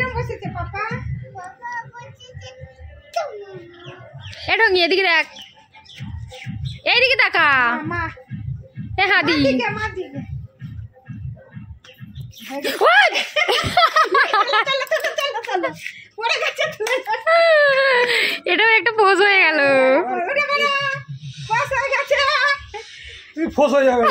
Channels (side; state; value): both; identical; correlation 1.00